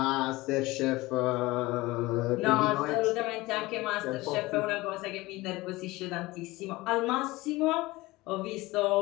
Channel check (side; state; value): right; quieter; 20.4 dB